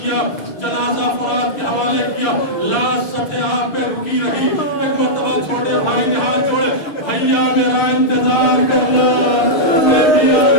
کیا. جنازہ فرات کے حوالے کیا. لاش سطح آب پہ رکی رہی. ایک مرتبہ چھوٹے بھائی نے ہاتھ جوڑے بھیا میرا انتظار کرنا میں بھی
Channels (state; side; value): late; right; 6.5 ms